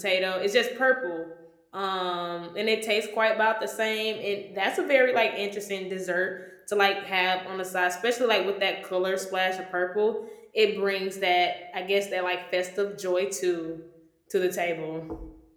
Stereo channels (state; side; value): identical; both; correlation 1.00